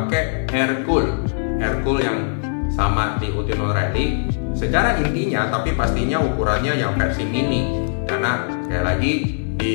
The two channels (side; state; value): right; silent; digital silence